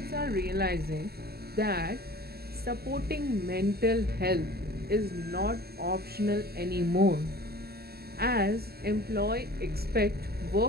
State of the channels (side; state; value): left; late; 0.46 ms